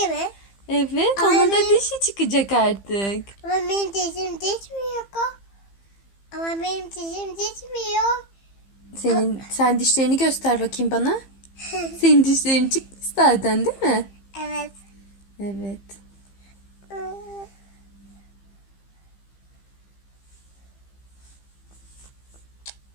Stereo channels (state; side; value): late; right; 15 ms